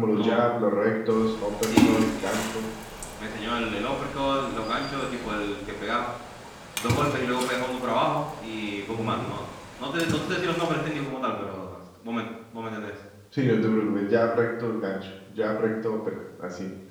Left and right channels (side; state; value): both; identical; correlation 1.00